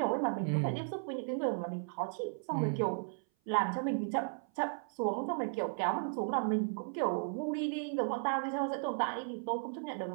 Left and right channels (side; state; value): left; silent; 54 dB below the other